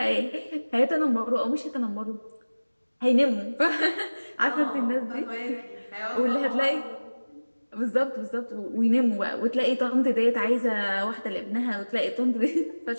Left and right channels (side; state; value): both; inverted; correlation -1.00